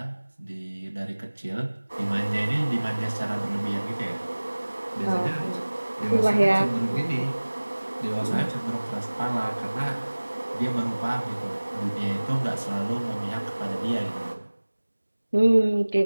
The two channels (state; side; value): inverted; both; correlation -1.00